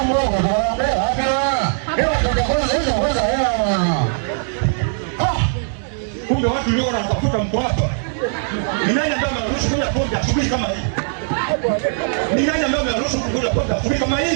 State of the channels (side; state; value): left; silent; digital silence